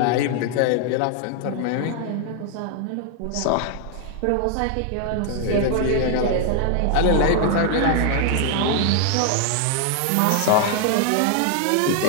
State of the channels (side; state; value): both; different; correlation 0.00